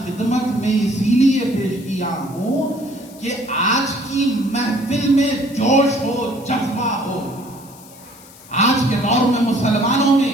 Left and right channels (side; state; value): left; noise; hiss, 22 dB below the sound